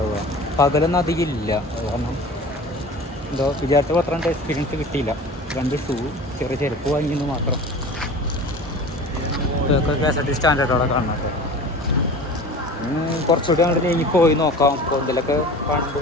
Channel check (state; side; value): normal; both; correlation 0.38